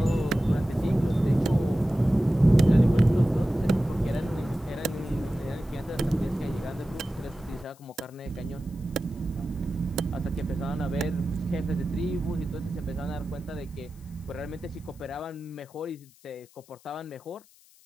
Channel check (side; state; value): left; noise; hiss, 27 dB below the sound